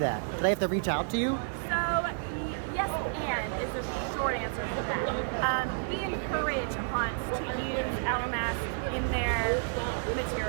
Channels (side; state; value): left; silent; 57 dB below the other